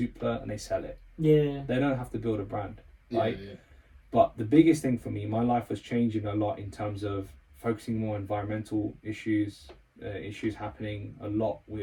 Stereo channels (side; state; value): both; identical; correlation 1.00